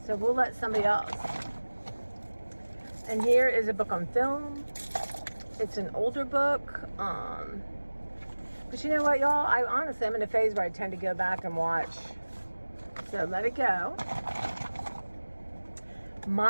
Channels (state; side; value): inverted; both; correlation -1.00